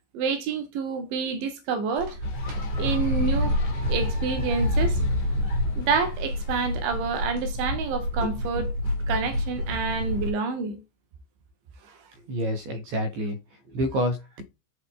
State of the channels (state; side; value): late; left; 15 ms